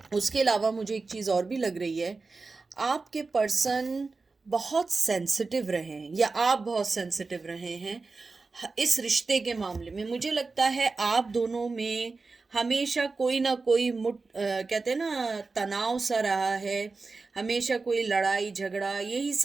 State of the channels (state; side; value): quieter; left; 4.0 dB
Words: उसके अलावा मुझे एक चीज़ और भी लग रही है, आपके पर्सन बहुत सेंसिटिव रहे हैं या आप बहुत सेंसिटिव रहे हैं इस रिश्ते के मामले में। मुझे लगता है आप दोनों में हमेशा कोई ना कोई कहते हैं ना, तनाव सा रहा है। हमेशा कोई लड़ाई झगड़ा, यही